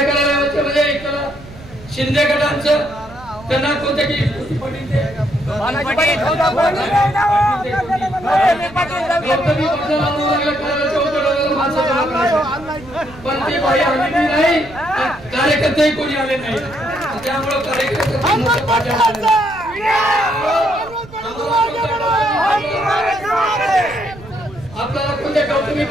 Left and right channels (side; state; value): right; noise; rumble, 19 dB below the sound